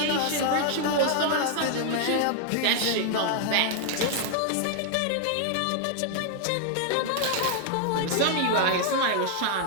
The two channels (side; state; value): both; different; correlation 0.00